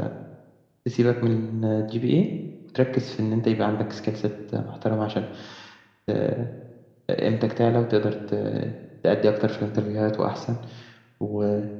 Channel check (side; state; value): both; identical; correlation 1.00